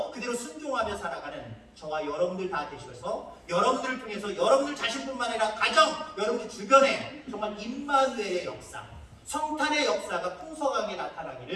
그대로 순종하며 살아가는 저와 여러분들 다 되셔서 여러분들을 통해서 여러분들 자신뿐만 아니라 가정, 여러분들 주변에 정말 임마누엘의 역사, 성탄의 역사가 풍성하게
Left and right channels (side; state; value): both; identical; correlation 1.00